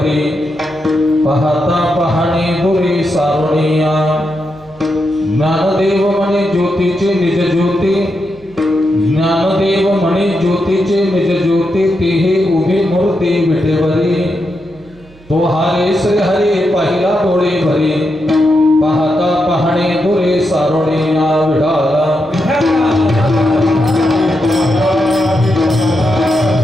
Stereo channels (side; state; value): right; noise; hum, 25 dB below the sound